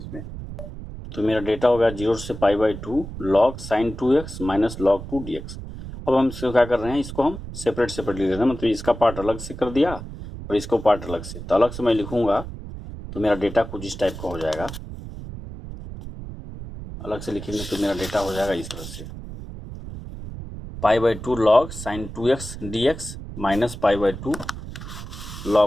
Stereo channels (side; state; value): right; noise; rumble, 11 dB below the sound